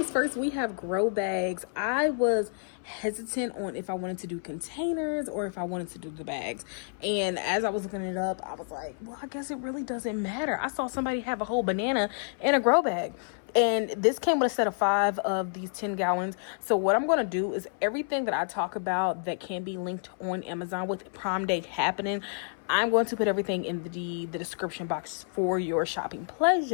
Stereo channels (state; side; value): silent; right; 58 dB below the other